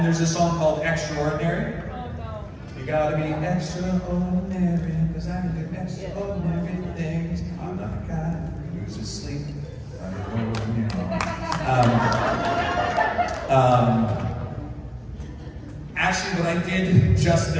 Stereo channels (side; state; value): both; identical; correlation 1.00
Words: there's a song called Extraordinary. You gotta be extraordinary, because I can do extraordinary things. I'm not a guy who's asleep. Actually, what I did just